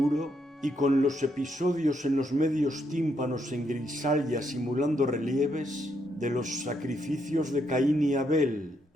y con los episodios en los medios tímpanos en grisalla simulando relieves de los sacrificios de Caín y Abel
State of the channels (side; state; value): both; normal; correlation 0.77